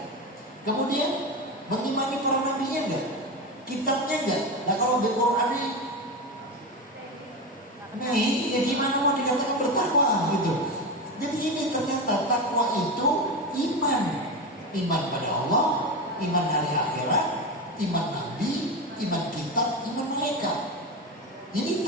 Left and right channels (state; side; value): normal; both; correlation 0.19